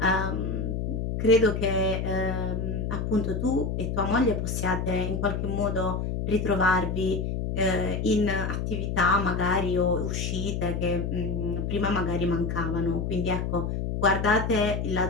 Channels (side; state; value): left; noise; hum, 2 dB below the sound